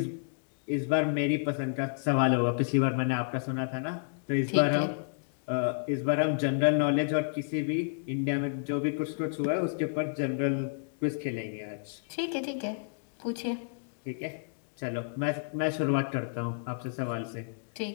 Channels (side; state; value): right; silent; digital silence